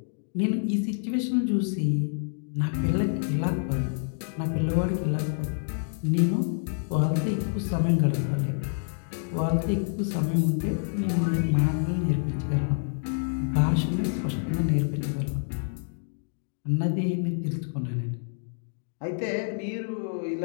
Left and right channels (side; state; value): right; silent; digital silence